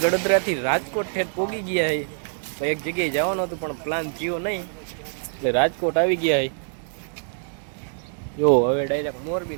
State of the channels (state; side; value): silent; left; digital silence